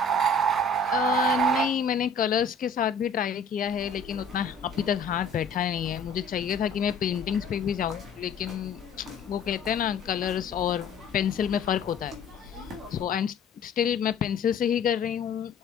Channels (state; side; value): quieter; right; 3.7 dB